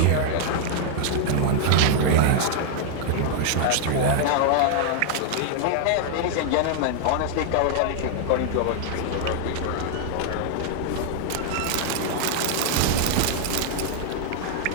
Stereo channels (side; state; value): both; different; correlation 0.00